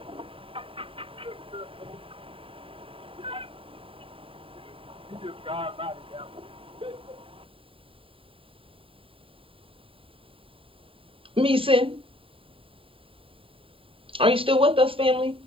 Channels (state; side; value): late; left; 0.26 ms